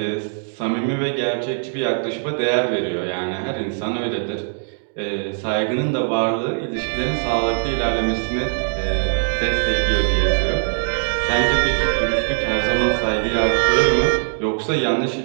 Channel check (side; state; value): left; silent; digital silence